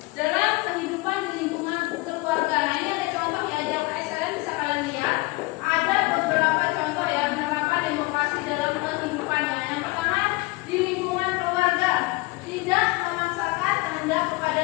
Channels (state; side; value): quieter; right; 23.6 dB